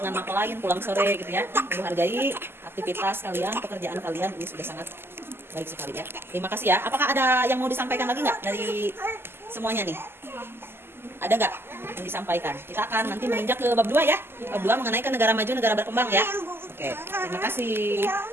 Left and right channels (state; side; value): late; left; 0.11 ms